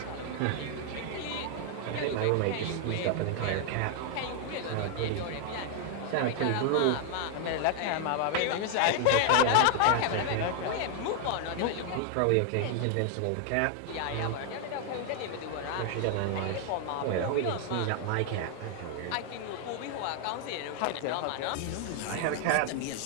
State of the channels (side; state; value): both; different; correlation 0.00